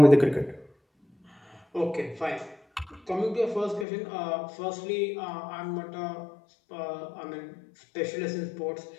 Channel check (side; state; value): right; drops out; at 3.9 s